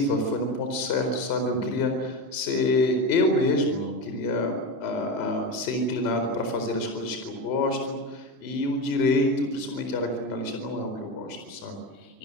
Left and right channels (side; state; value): right; late; 3.0 ms